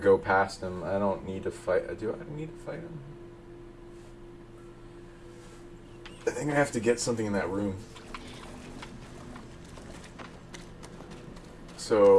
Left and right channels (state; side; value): identical; both; correlation 1.00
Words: past him. I don't need to fight. Do I need to fight him? I think I have to get something in that room.